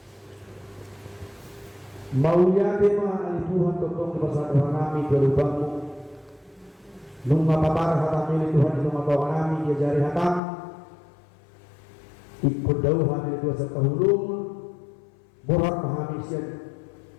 maunya tema ali Tuhan tentang kebesaran kami berubahmu nung mapaparah hatami Tuhan itu matawa kami dia jari hatam ikut dauh hamil dua setahulung borak pahami siap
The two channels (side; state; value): right; drops out; at 10.4 s